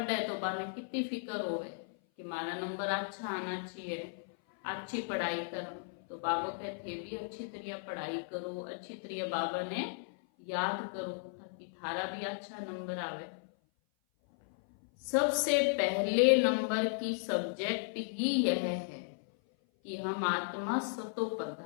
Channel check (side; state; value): right; silent; 54 dB below the other